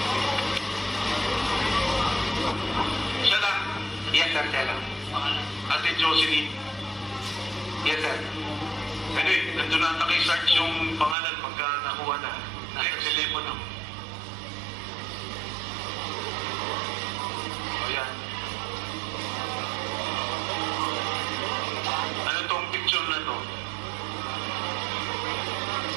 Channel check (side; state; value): left; drops out; at 11.2 s